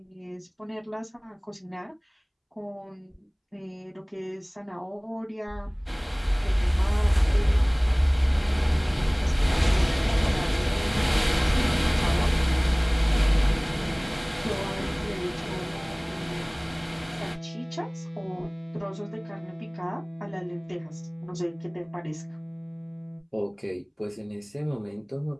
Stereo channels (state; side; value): identical; both; correlation 1.00